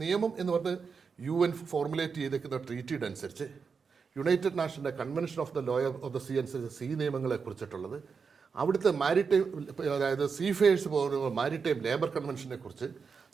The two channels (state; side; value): quieter; left; 5.5 dB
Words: നിയമം എന്ന് പറഞ്ഞ് UN ഫോർമുലേറ്റ് ചെയ്തേക്കുന്ന ട്രീറ്റിയുടെ അനുസരിച്ച്, യുണൈറ്റഡ് നാഷൻ്റെ convention of the law of the sea അനുസരിച്ച് സീ നിയമങ്ങളെ കുറിച്ചിട്ടുള്ളത്, അവിടുത്തെ മാരിടൈം, അതായത് സീഫെയേഴ്സ് പോകുന്ന മാരിടൈം ലേബർ കൺവെൻഷനെ കുറിച്ച്,